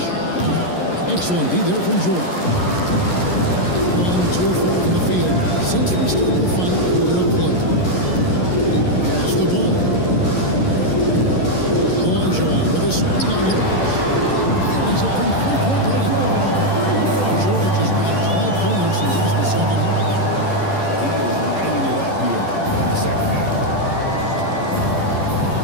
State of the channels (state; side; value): late; right; 11 ms